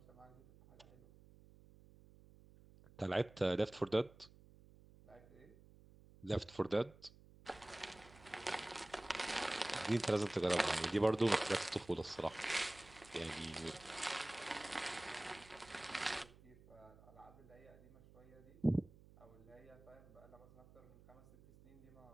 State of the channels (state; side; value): noise; right; hum, 22 dB below the sound